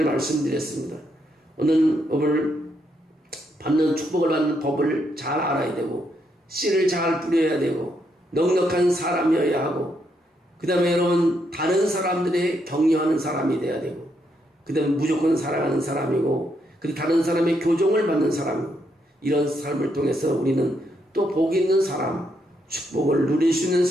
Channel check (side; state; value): both; normal; correlation 0.77